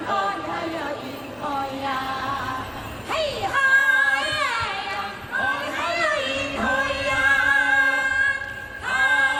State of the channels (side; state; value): both; identical; correlation 1.00